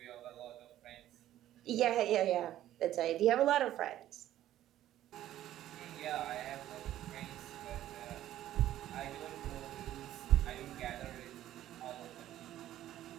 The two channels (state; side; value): quieter; left; 13.0 dB